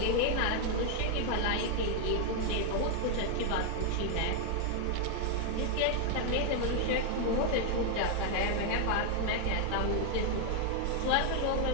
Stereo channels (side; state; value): both; different; correlation 0.00